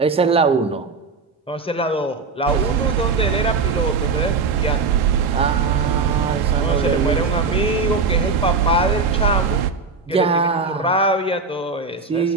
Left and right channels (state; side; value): quieter; left; 4.5 dB